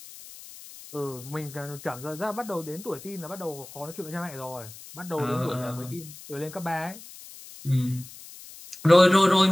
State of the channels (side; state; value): left; noise; hiss, 17 dB below the sound